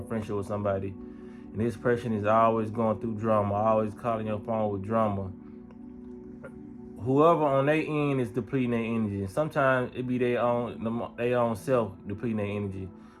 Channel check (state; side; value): identical; both; correlation 1.00